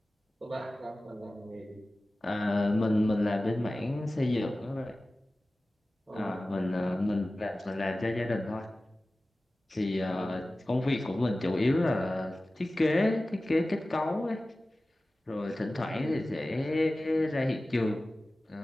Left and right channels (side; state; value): both; normal; correlation 0.97